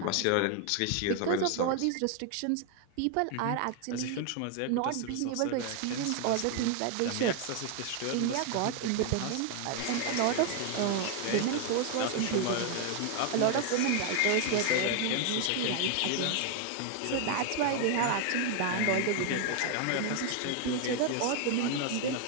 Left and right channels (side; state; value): both; different; correlation 0.00